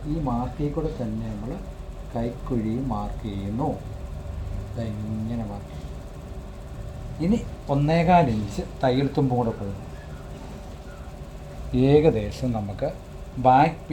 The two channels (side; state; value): both; identical; correlation 1.00